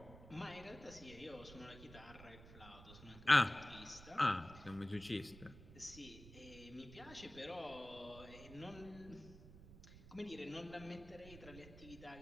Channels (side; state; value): right; noise; rumble, 16 dB below the sound